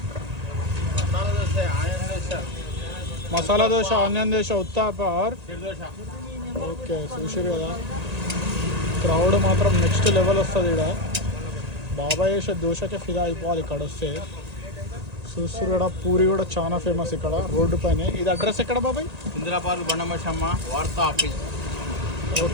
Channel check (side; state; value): left; late; 1.8 ms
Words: మసాలా దోశ, ఆనియన్ దోశ, ఉత్తాపర్. ఓకే, చూసారు కదా, క్రౌడ్ మాత్రం నెక్స్ట్ లెవెల్ వస్తుంది. ఇక్కడ బాబాయ్ వేసే దోశకే ఫిదా అయిపోవాలి ఇక్కడ వస్తే. చూస్తారు కూడా, పూరి కూడా చాలా ఫేమస్ ఇక్కడ రోడ్డు పైన. ఇది అడ్రస్ ఎక్కడ బాబాయ్? ఇందిరా పార్క్, బండమశమ్మ, వార్తా ఆఫీస్.